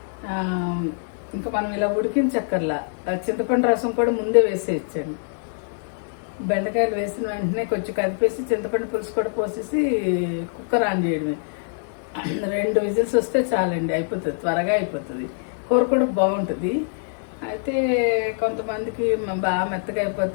ఇంకా మనం ఇలా ఉడికించక్కర్లా. చింతపండు రసం కూడా ముందే వేసేయచ్చండి. బెండకాయలు వేసిన వెంటనే కొంచెం కదిపేసి చింతపండు పులుసు కూడా పోసేసి కుక్కర్ ఆన్ చేయడమే. 2 విజిల్స్ వస్తే చాలండి, అయిపోతుంది, త్వరగా అయిపోతుంది. కూర కూడా బాగుంటుంది. అయితే కొంతమందికి బాగా మెత్తగా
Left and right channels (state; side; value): silent; right; digital silence